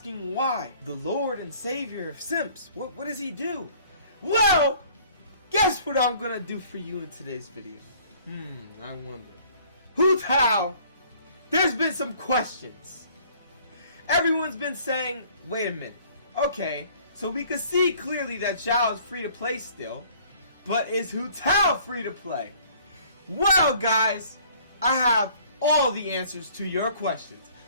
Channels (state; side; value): inverted; both; correlation -0.55